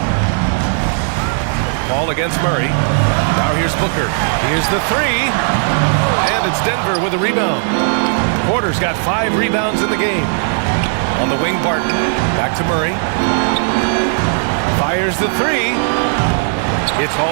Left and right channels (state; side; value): silent; left; 55 dB below the other